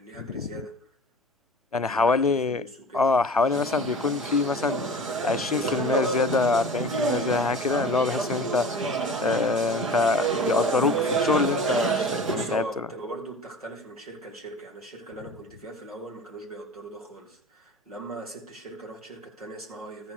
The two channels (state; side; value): normal; both; correlation 0.39